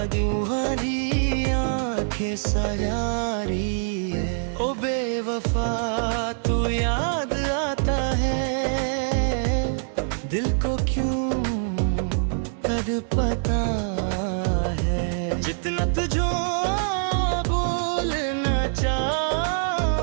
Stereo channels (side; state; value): left; silent; 62 dB below the other